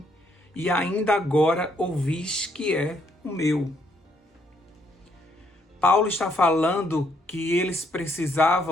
e ainda agora ouvis que é o meu. Paulo está falando que eles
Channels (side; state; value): both; normal; correlation 0.71